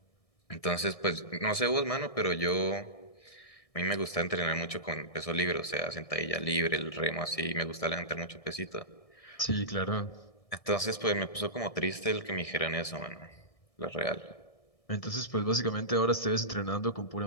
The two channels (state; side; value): late; right; 1.6 ms